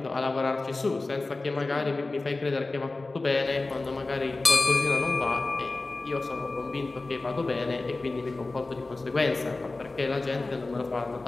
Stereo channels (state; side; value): quieter; right; 3.3 dB